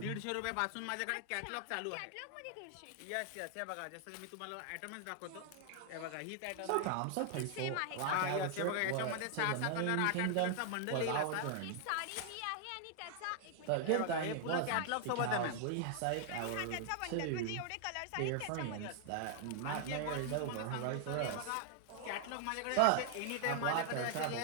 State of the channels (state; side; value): different; both; correlation 0.00